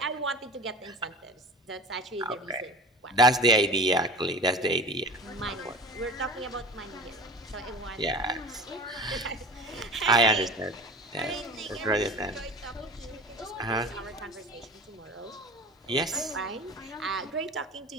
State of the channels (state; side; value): normal; both; correlation 0.36